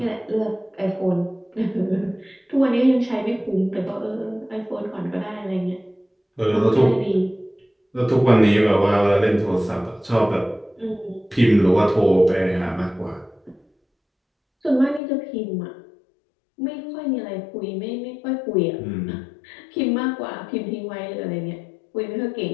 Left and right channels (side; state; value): right; drops out; at 15.0 s